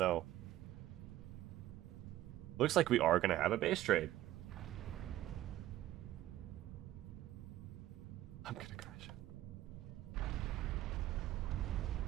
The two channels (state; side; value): quieter; left; 14.4 dB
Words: Looks like we are going to have a base trade. I'm gonna crash.